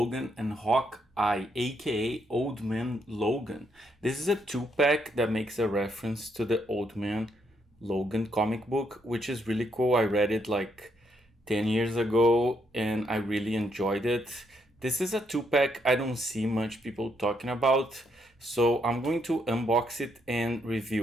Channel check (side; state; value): both; normal; correlation 0.75